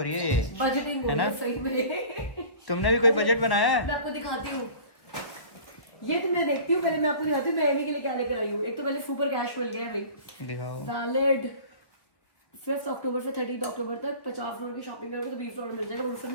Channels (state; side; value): late; right; 1.5 ms